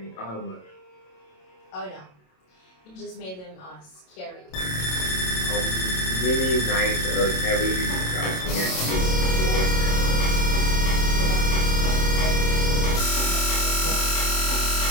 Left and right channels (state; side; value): late; right; 27 ms